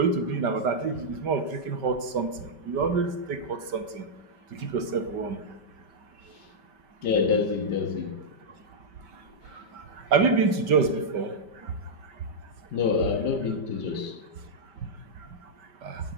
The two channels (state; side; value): late; left; 5.2 ms